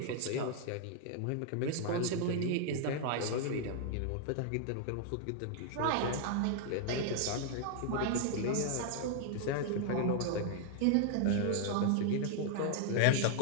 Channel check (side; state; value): both; different; correlation 0.00